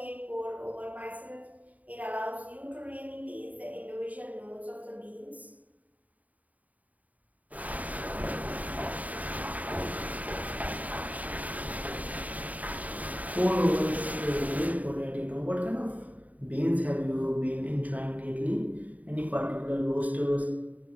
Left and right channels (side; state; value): left; late; 0.073 ms